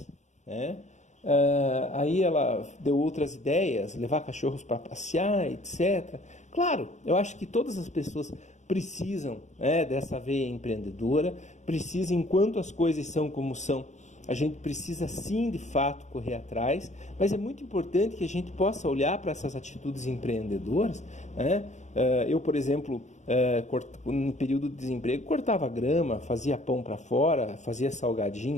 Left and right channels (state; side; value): late; right; 0.34 ms